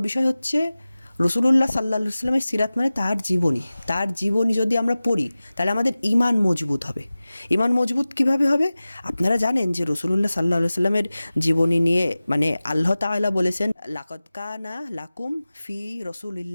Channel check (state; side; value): inverted; both; correlation -0.97